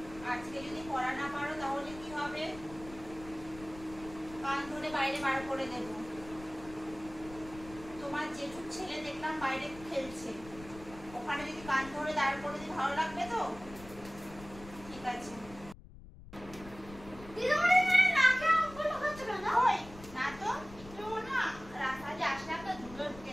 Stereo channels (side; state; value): left; noise; rumble, 17 dB below the sound